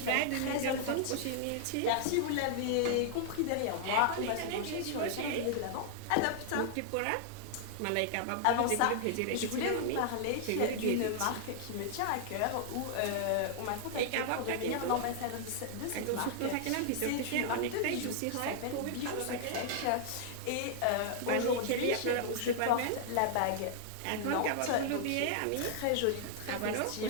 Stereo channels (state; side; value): different; both; correlation -0.01